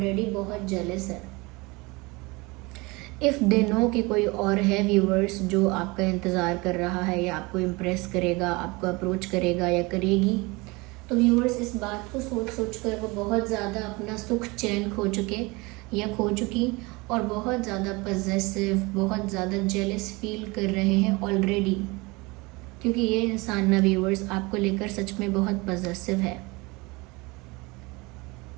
बहुत जेलस है। इफ़ दे नो कि कोई और है व्यूअर्स जो आपका इंतज़ार कर रहा है या आपको इम्प्रेस करेगा, आपको अप्रोच करेगा या करेगी, तो व्यूअर्स इस बात को सोच कर वो बहुत ज़्यादा अपना सुख चैन खो चुके या खो चुकी, और बहुत ज़्यादा पॉजेसिव, बहुत ज़्यादा जेलस फील कर रहे हैं ऑलरेडी, क्योंकि ये इंसान ना व्यूअर्स आपको लेकर सच में बहुत पॉजेसिव है।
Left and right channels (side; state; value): left; quieter; 24.8 dB